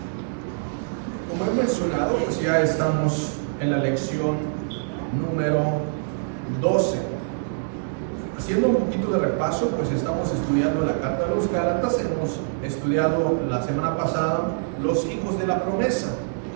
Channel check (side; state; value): left; silent; digital silence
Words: Como he mencionado, pues ya estamos en la lección número 12. Haciendo un poquito de repaso, pues estamos estudiando la carta de los Gálatas. Hemos estudiado la semana pasada los hijos de la promesa.